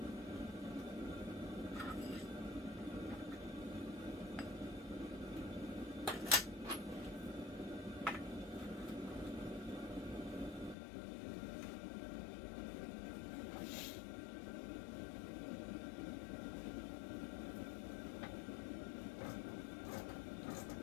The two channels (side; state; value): right; drops out; at 10.8 s